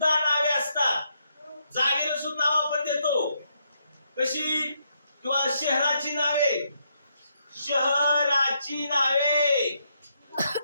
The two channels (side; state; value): both; inverted; correlation -0.77